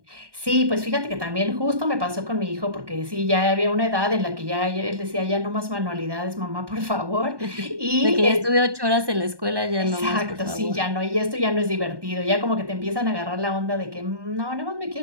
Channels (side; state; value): left; late; 1.2 ms